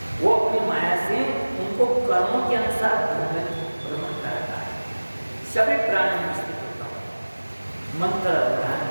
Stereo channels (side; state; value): both; inverted; correlation -1.00